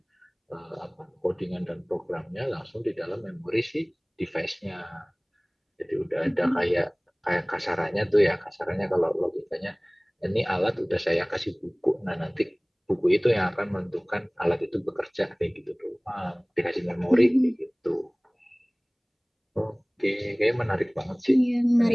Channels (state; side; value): identical; both; correlation 1.00